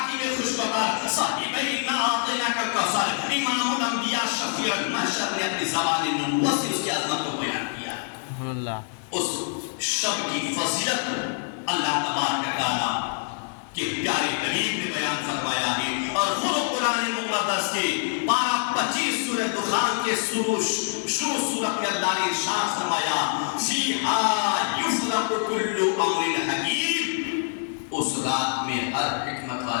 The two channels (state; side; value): silent; right; digital silence